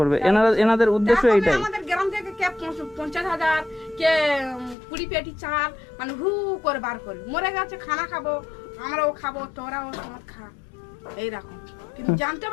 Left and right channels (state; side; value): drops out; right; at 4.8 s